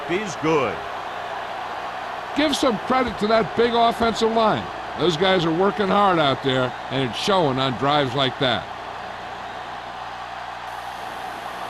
is good. Give some credit to that big offensive line. Those guys are working hard out there, and it's showing on drives like that.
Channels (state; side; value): identical; both; correlation 1.00